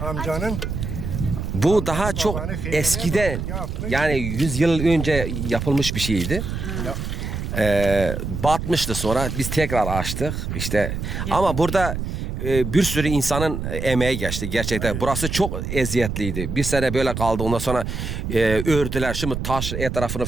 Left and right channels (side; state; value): right; noise; rumble, 4 dB below the sound